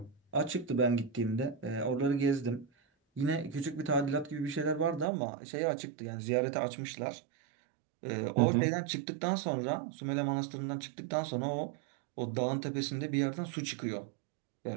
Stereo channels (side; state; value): left; drops out; at 5.1 s